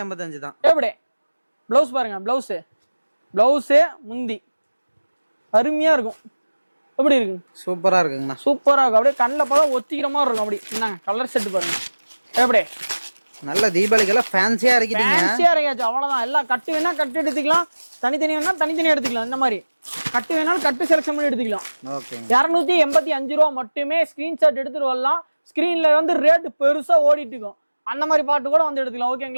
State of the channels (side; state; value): both; inverted; correlation -1.00